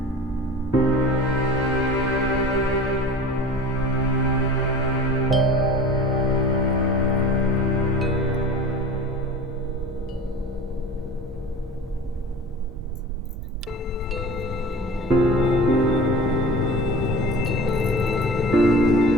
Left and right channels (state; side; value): normal; both; correlation 0.38